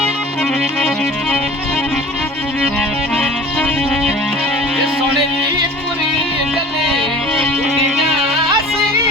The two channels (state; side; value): normal; both; correlation 0.43